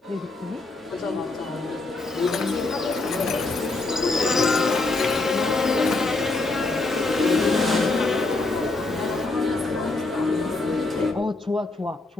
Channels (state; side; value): quieter; right; 3.2 dB